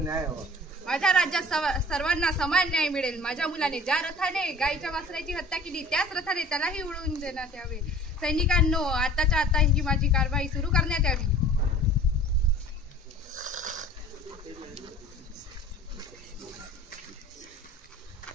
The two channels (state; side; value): normal; both; correlation 0.46